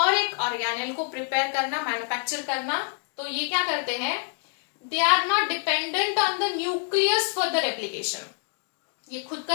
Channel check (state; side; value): quieter; right; 38.9 dB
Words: एक ऑर्गेनेल को प्रिपेयर करना, मैन्युफैक्चर करना। तो ये क्या करते हैं, they are not dependent on the nucleus for the replication. ये खुद